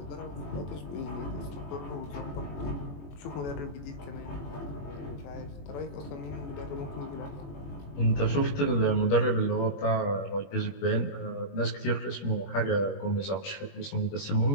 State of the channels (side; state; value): right; late; 21 ms